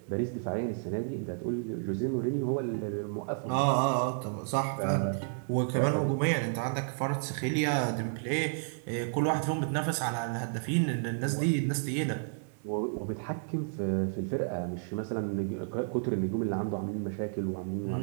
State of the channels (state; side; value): silent; left; digital silence